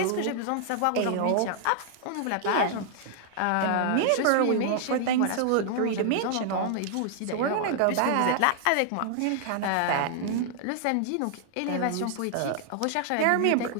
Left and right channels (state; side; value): different; both; correlation -0.01